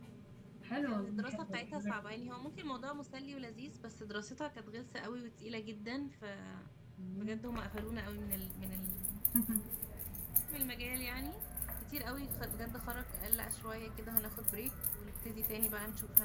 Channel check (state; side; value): identical; both; correlation 1.00